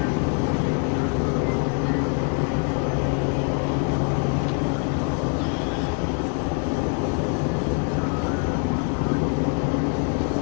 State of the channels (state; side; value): quieter; right; 35.2 dB